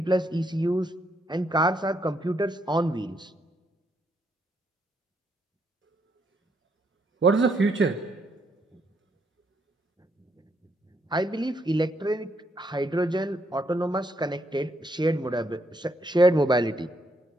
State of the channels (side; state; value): both; normal; correlation 0.75